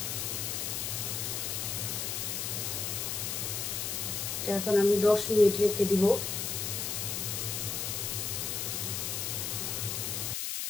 এখন আমি 10 মিনিট রেখে দিব।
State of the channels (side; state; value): left; noise; hiss, 2 dB below the sound